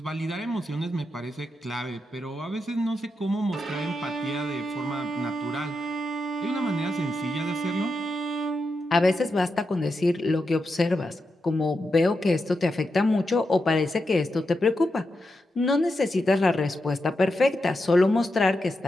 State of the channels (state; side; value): normal; both; correlation 0.87